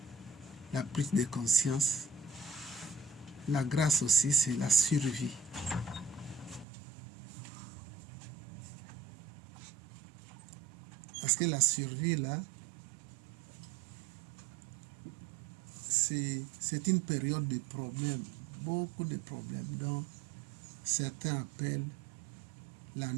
de conscience, la grâce aussi, c'est la survie. Parce que la survie, là, c'est une période de problèmes, beaucoup de problèmes, dont certains appellent la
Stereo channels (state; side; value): drops out; left; at 6.7 s